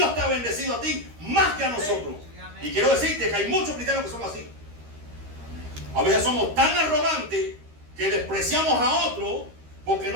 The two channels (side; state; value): left; late; 13 ms